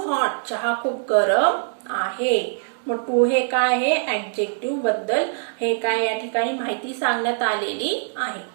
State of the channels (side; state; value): left; silent; 64 dB below the other